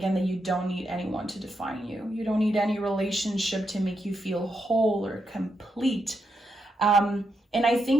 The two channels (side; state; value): both; normal; correlation 0.82